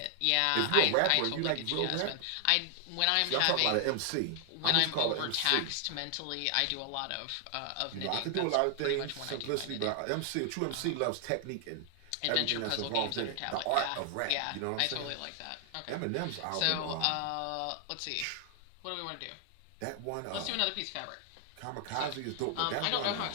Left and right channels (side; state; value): both; different; correlation 0.00